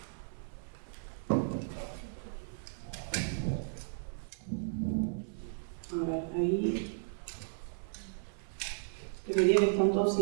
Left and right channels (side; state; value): left; silent; 54 dB below the other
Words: A ver, ahí. Debería que están todos